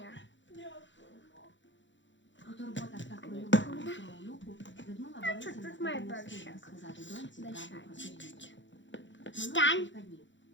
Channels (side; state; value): right; late; 0.54 ms